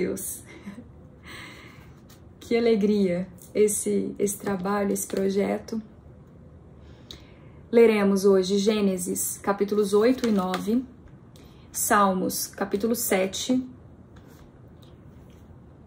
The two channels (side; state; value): both; identical; correlation 1.00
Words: Que alegria esse trabalho, esse projeto. Leremos hoje Gênesis, capítulos 8 e 9, Salmos, capítulo 7,